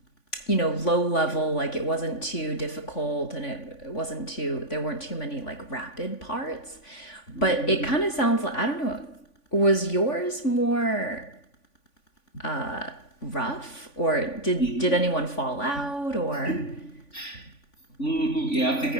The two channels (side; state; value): right; late; 3.5 ms